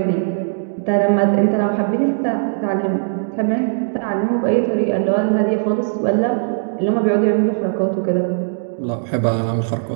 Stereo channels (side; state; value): left; silent; digital silence